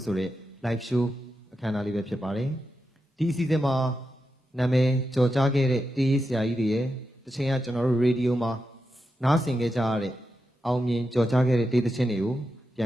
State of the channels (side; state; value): both; normal; correlation 0.88